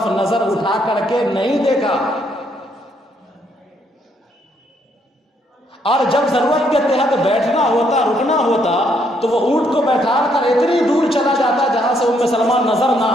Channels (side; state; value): both; normal; correlation 0.72